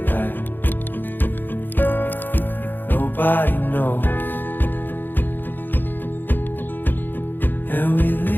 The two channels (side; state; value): right; late; 0.092 ms